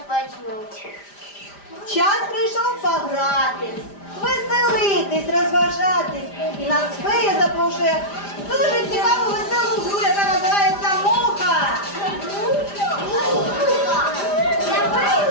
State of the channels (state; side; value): late; right; 5.0 ms